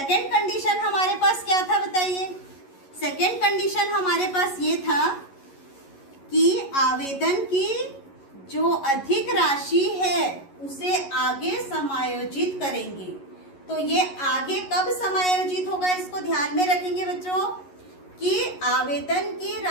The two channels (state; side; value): late; right; 11 ms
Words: कंडीशन हमारे पास क्या था बताइए? सेकेंड कंडीशन हमारे पास ये था कि आवेदन की जो अधिक राशि है उसे आगे समायोजित करेंगे। तो ये आगे कब समायोजित होगा इसको ध्यान में रखेंगे बच्चों कि आवेदन की